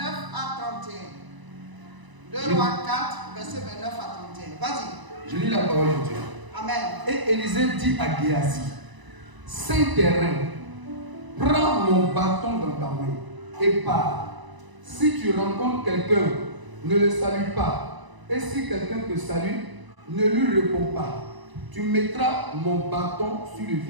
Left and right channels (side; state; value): left; late; 1.0 ms